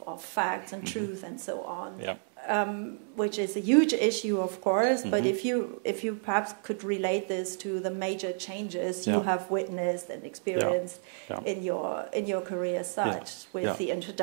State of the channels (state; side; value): silent; left; 57 dB below the other